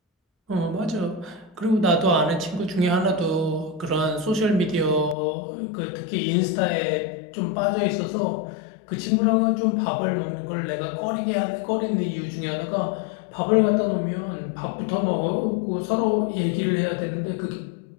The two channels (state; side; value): drops out; right; at 5.2 s